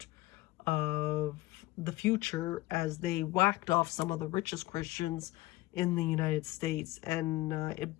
of the future as they whacked off some of the richest Christians in the United States, and it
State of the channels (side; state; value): right; quieter; 18.4 dB